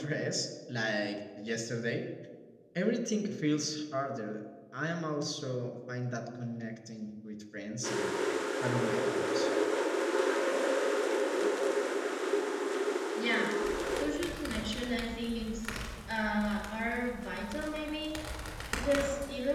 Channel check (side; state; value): both; identical; correlation 1.00